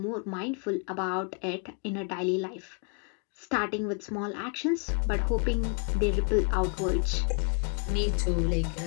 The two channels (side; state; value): right; quieter; 35.0 dB